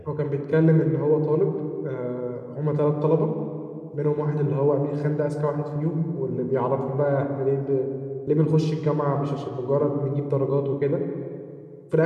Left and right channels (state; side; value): identical; both; correlation 1.00